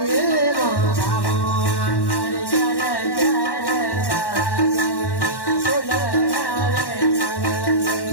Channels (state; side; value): late; right; 1.1 ms